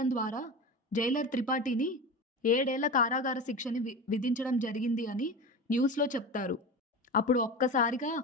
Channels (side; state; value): both; normal; correlation 0.28